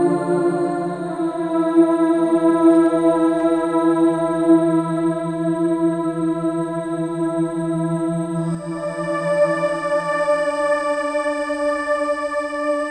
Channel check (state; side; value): identical; both; correlation 1.00